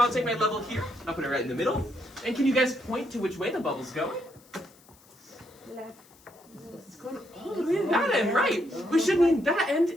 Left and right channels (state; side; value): noise; left; hiss, 28 dB below the sound